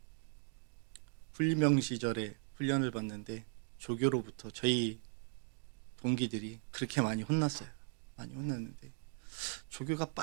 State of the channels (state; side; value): silent; left; 52 dB below the other